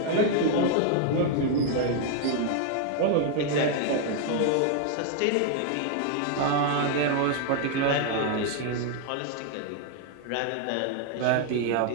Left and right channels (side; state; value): both; different; correlation 0.00